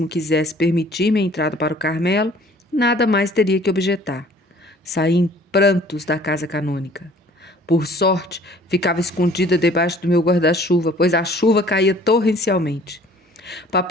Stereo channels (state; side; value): normal; both; correlation 0.53